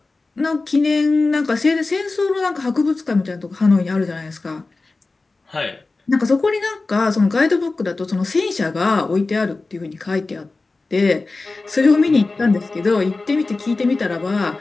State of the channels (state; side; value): quieter; right; 3.5 dB